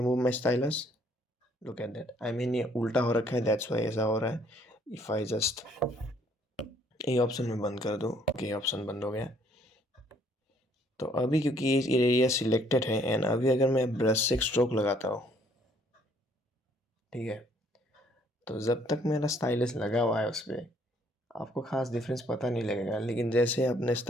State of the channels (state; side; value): normal; both; correlation 0.64